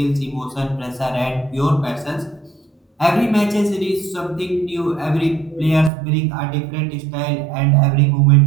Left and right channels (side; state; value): left; drops out; at 5.9 s